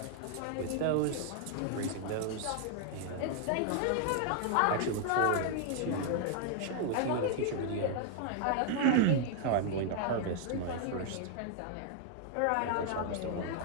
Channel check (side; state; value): both; different; correlation 0.00